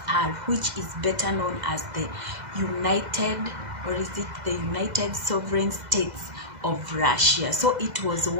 which is better known as the United Sovereign States of Russia. So it was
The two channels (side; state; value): left; late; 2.0 ms